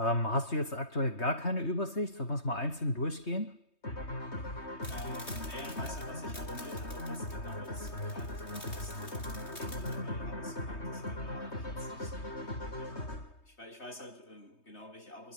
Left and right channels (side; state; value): right; late; 3.2 ms